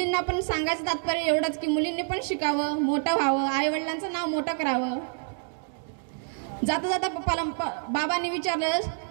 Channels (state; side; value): silent; left; digital silence